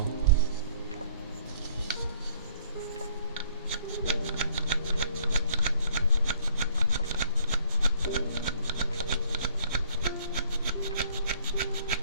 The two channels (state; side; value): inverted; both; correlation -0.60